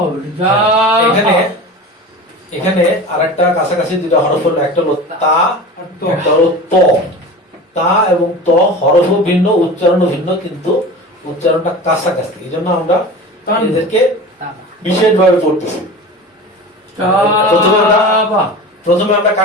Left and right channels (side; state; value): both; normal; correlation 0.34